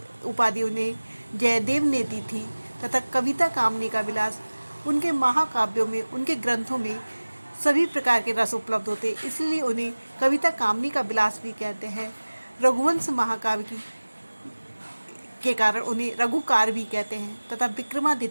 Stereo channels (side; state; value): both; inverted; correlation -1.00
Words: उपाधि उन्हें जयदेव ने दी थी। तथा कविता कामनी का विलास, उनके महाकाव्यों में, उनके ग्रंथों में सभी प्रकार के रस उपलब्ध होते, इसलिए उन्हें कविता कामनी का विलास भी कहते हैं। रघुवंश महाकाव्य के कारण उन्हें रघुकार भी कहते हैं। तथा